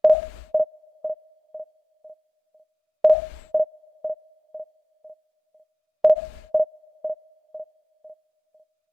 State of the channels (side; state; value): both; normal; correlation 0.96